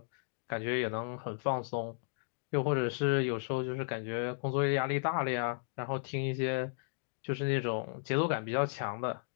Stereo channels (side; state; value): right; silent; digital silence